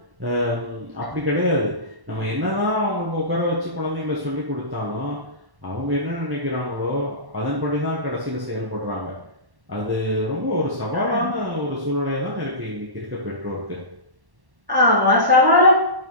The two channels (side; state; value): left; late; 1.1 ms